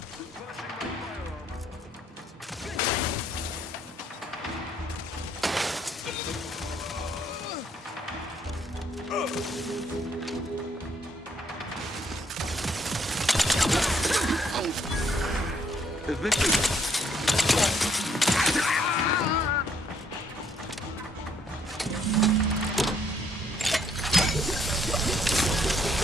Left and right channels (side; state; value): both; normal; correlation 0.68